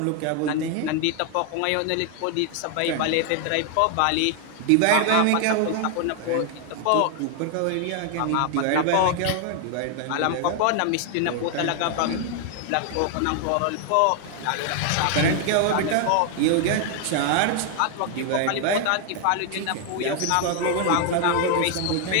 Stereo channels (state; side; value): different; both; correlation 0.00